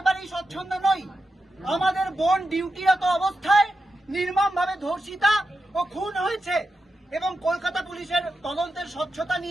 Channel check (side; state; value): both; normal; correlation 0.89